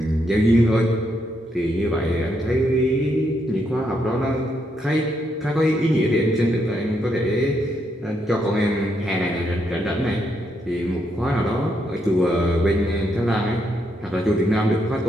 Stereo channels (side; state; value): both; normal; correlation 0.78